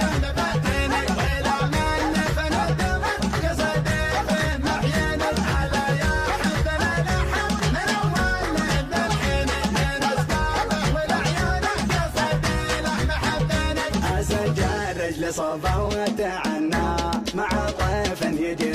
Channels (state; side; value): identical; both; correlation 1.00